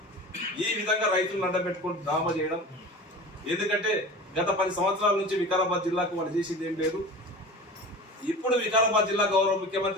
ఈ విధంగా రైతులను అడ్డపెట్టుకొని డ్రామా చేయడం. ఎందుకంటే గత 10 సంవత్సరాల నుంచి వికారాబాద్ జిల్లాకు వాళ్ళు చేసింది ఏం లేదు. ఇప్పుడు వికారాబాద్ జిల్లా గౌరవ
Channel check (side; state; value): both; normal; correlation 0.35